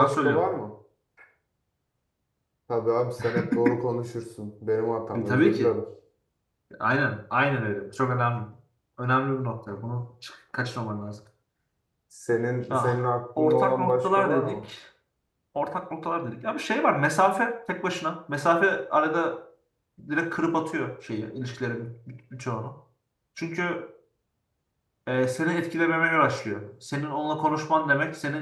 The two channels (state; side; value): identical; both; correlation 1.00